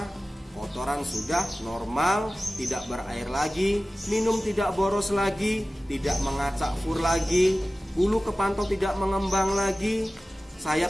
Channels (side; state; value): both; normal; correlation 0.96